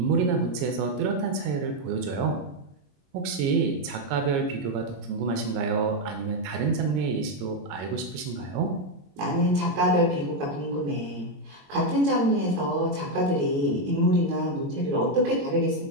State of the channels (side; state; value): left; late; 22 ms